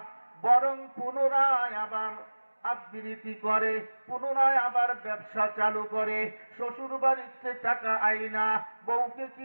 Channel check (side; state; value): both; inverted; correlation -1.00